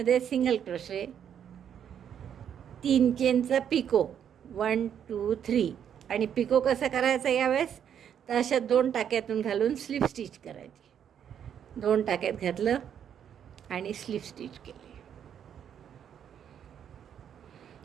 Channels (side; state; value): left; quieter; 8.8 dB